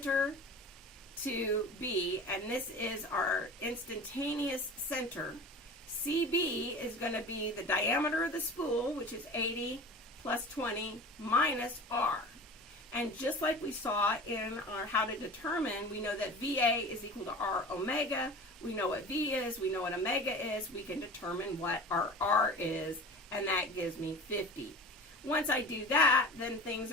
to B, and this is our instantaneous center. CB is going to be the diameter of the spool, which is 80 plus 20 minus R. And just like we saw in our how to determine, we know that VA is equal to R omega. We know what V is, we know what omega is. We can determine what our R is, and that gives me 50. Once I do that, then things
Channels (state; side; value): normal; both; correlation 0.37